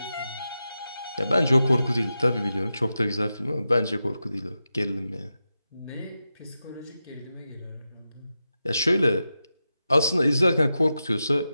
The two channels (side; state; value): both; inverted; correlation -0.91